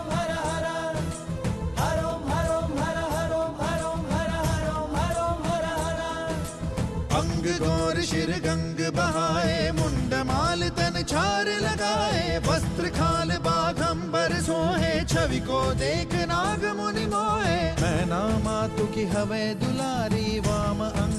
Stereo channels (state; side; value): identical; both; correlation 1.00